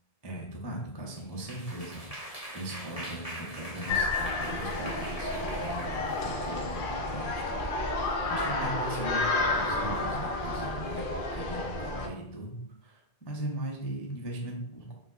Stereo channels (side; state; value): right; late; 1.7 ms